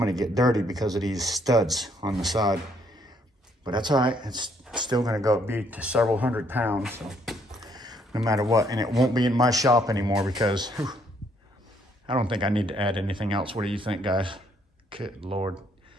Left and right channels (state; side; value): normal; both; correlation 0.68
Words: to get dirty because of these studs on the side. But that's all right. It's still going to be to several 100 pounds, so no matter what. And it won't be in my shop anymore because I don't think I need to add anything else. What do you think, guys? Good Lord.